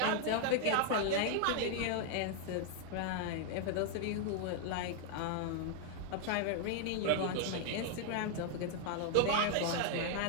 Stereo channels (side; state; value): both; different; correlation 0.00